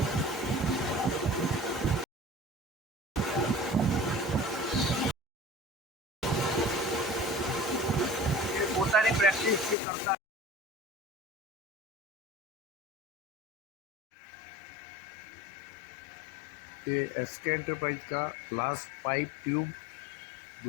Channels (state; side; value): drops out; right; at 9.8 s